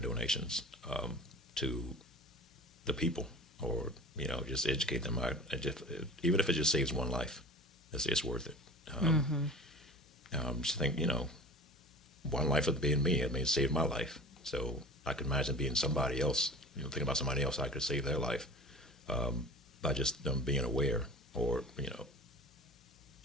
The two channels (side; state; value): both; normal; correlation 0.38